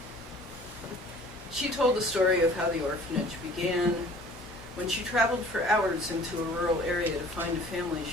She told the story of how the orphanage began, when she traveled for hours into a rural area to find a family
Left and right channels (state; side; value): normal; both; correlation 0.50